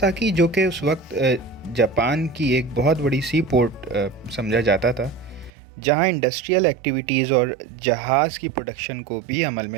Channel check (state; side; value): drops out; left; at 5.5 s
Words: जो कि उस वक्त जापान की एक बहुत बड़ी सी पोर्ट समझा जाता था, जहां इंडस्ट्रियल एक्टिविटीज़ और जहाज़ की प्रोडक्शन को भी अमल